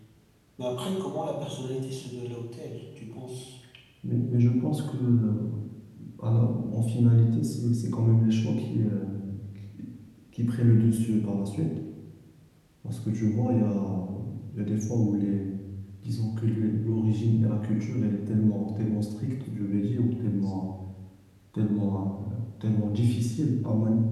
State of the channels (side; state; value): both; identical; correlation 1.00